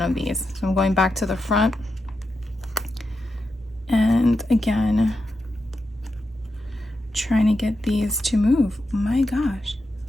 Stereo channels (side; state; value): both; normal; correlation 0.87